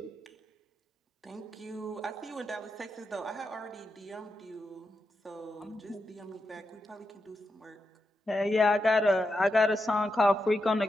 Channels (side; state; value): both; normal; correlation 0.87